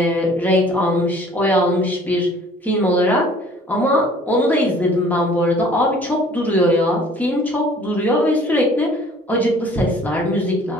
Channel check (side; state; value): both; normal; correlation 0.53